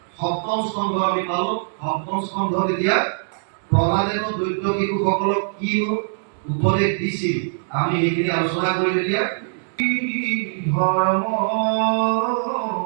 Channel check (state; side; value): silent; left; digital silence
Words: সপ্তম স্কন্ধ আমি পালো সপ্তম স্কন্ধ এতিয়া প্ৰহ্লাদেৱ দৈত্য শিশুসকলক কি উপদেশ দিছিল আমি এইখিনি আলোচনা কৰিম এতিয়া ধৰ্ম